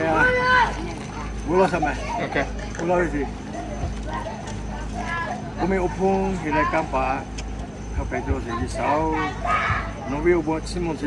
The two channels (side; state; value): both; identical; correlation 1.00